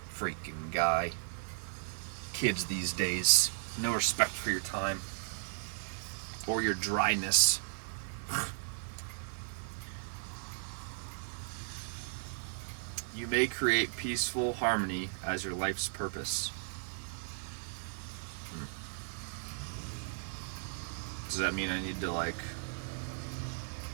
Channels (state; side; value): silent; left; 54 dB below the other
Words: Freaking guy. Kids these days. No respect for your time. or your dryness. You may create peaceful harmony as your life's purpose. Does that mean I need to like